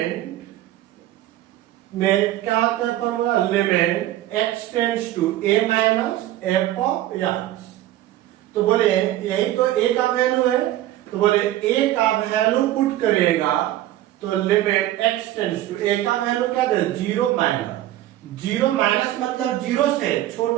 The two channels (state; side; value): quieter; left; 14.1 dB